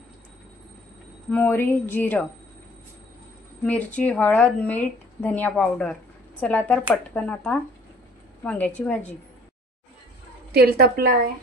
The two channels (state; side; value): normal; both; correlation 0.54